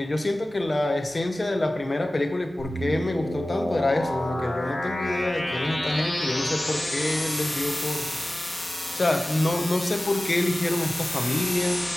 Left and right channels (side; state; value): both; normal; correlation 0.97